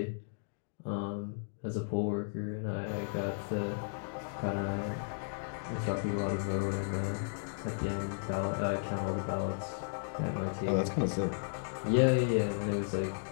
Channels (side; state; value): right; silent; digital silence